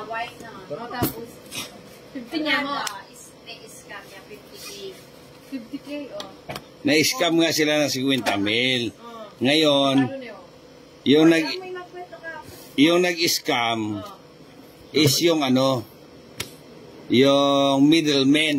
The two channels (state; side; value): identical; both; correlation 1.00